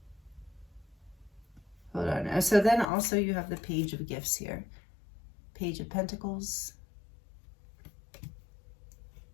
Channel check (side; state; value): right; drops out; at 2.9 s